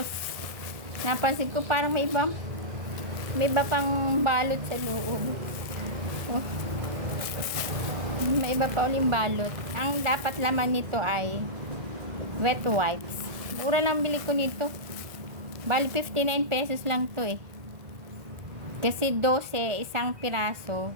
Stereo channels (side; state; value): left; late; 1.4 ms